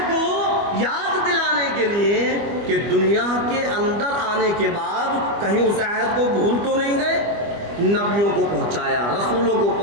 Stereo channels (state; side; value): late; left; 25 ms